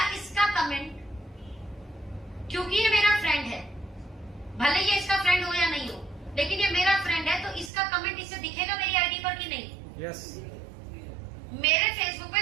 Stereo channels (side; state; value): left; drops out; at 7.7 s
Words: इसका कमेंट, क्योंकि ये मेरा फ्रेंड है, भले ये इसका फ्रेंड हो या नहीं हो, लेकिन ये मेरा फ्रेंड है, तो इसका कमेंट इसे दिखेगा मेरी आईडी पर कि नहीं? यस। मेरे फेसबुक